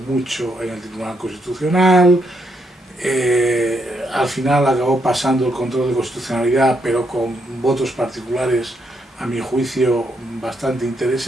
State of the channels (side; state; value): both; normal; correlation 0.77